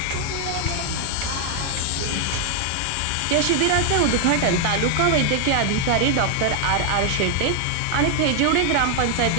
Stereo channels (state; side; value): different; both; correlation 0.00